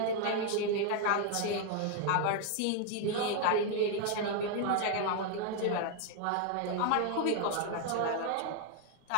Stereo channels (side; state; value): both; different; correlation 0.00